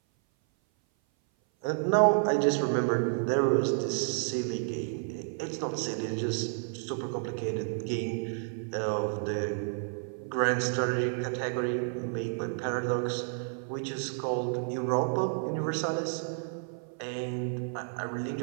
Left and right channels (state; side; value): silent; left; 56 dB below the other